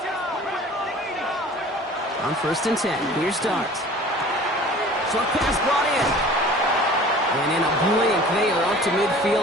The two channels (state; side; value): normal; both; correlation 0.45